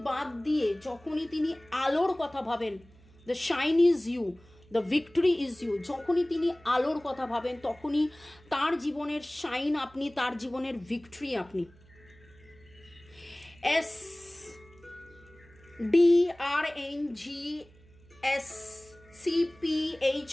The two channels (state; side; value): noise; right; hum, 26 dB below the sound